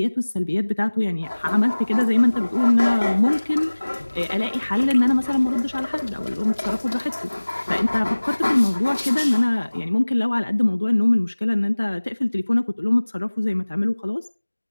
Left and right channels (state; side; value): inverted; both; correlation -1.00